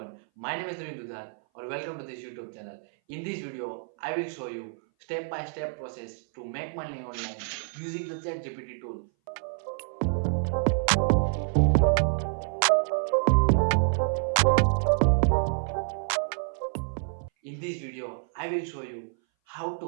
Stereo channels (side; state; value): left; silent; 58 dB below the other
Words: my name is Dhruvin Dudhat or welcome to this YouTube channel. In this video, I will show you step-by-step process to make money online using the Chat GPT tool. In this video, I will show you how